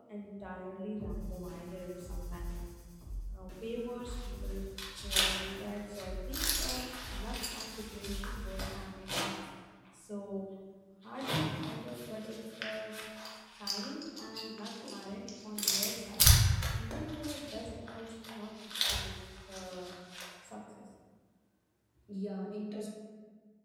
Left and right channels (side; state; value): both; identical; correlation 1.00